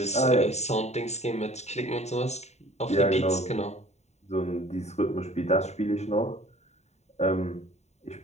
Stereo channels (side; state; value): right; late; 0.32 ms